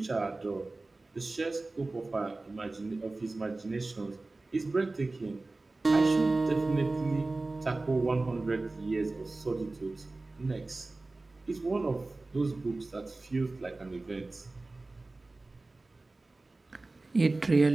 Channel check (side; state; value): left; quieter; 3.2 dB